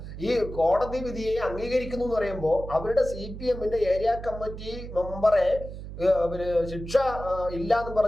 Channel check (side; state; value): right; noise; hum, 10 dB below the sound